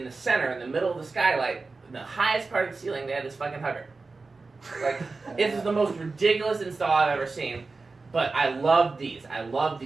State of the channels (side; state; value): left; quieter; 3.9 dB